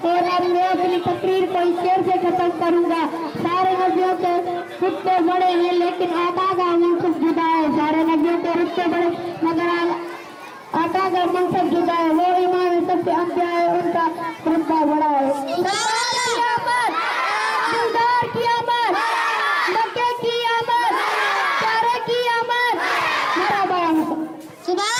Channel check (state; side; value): identical; both; correlation 1.00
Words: और अब मैं अपनी तकरीर को इस शेर से खत्म करूंगा। सारे नबियों के रुतबे बड़े हैं लेकिन आका का मनसब जुदा है। सारे नबियों के रुतबे बड़े मगर आका का मनसब जुदा है। वो इमाम सबसे अंबिया है, उनका रुतबा बड़ा है।